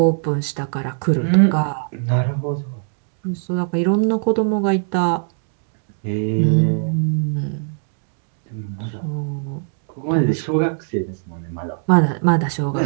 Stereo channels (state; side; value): silent; left; digital silence